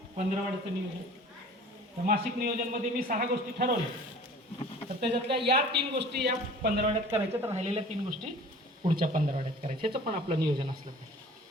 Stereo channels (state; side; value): normal; both; correlation 0.45